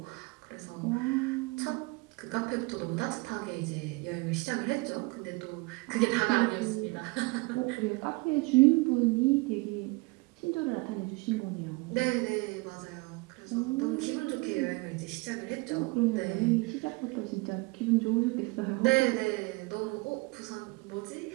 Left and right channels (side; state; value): left; quieter; 26.0 dB